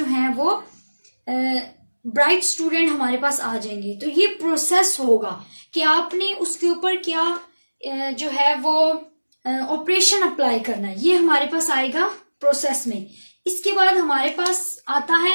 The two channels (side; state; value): both; inverted; correlation -1.00